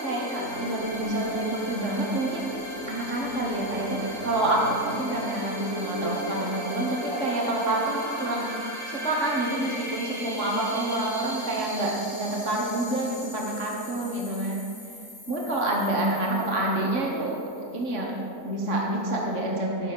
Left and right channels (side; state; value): right; late; 3.9 ms